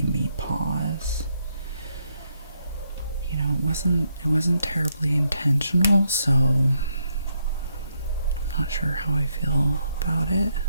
me pause. You know, it wasn't terribly intentional, so I'm not sure how I feel about it,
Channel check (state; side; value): inverted; both; correlation -0.77